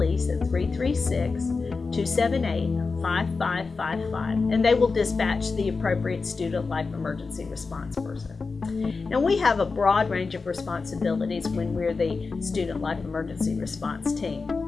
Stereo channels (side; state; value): right; quieter; 4.3 dB